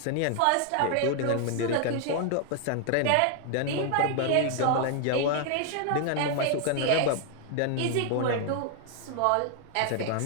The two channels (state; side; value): different; both; correlation 0.00